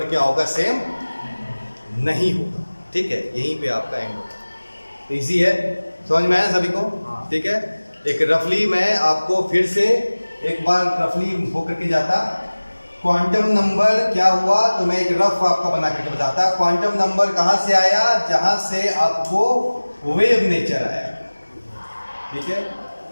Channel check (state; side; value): inverted; both; correlation -1.00